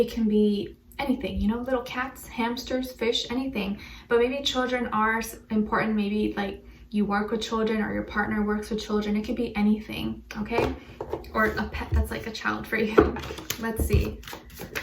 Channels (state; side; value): identical; both; correlation 1.00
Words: can be anything, little cats, hamsters, fish, anything. But maybe children are important. Maybe like you work with children, or your partner works with children. It could be anything, okay? Or a pet that's like a child for you. Let's see.